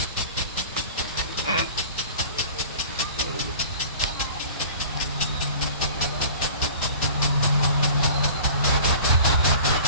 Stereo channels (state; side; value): inverted; both; correlation -0.43